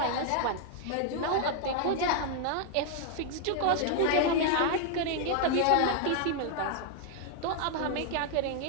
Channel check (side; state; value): both; different; correlation 0.00